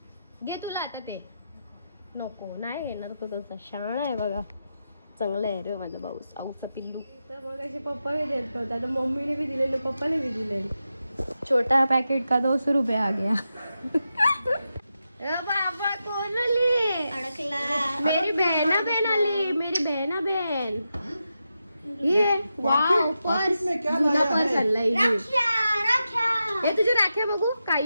घे तुला आता ते. नको नाही घेणार तो तसा. शाळा आहे बघा, चांगला आहे रे माझा भाऊ. आऊचा पिल्लू. तर मग असे पप्पा बी देत नव्हता, आता मम्मीने बी दिलेलं, पप्पाने बी दिले. छोटा पैकेट का 200 रुपये आ गया. बाबा कोण आली? अडकला. मेरी बहना बहन आली, मेरी बहना बहन. ये वाव, पर्स. जुना पर्स आणलाय. हे तुझ्या राख्या बघू काय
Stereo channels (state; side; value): inverted; both; correlation -0.88